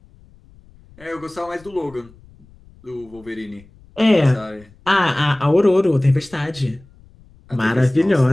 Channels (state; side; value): noise; left; rumble, 26 dB below the sound